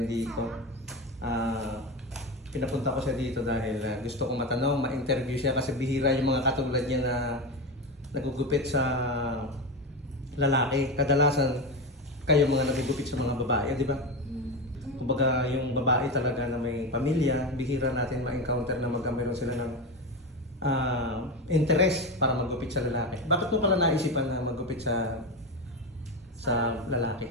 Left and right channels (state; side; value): normal; both; correlation 0.18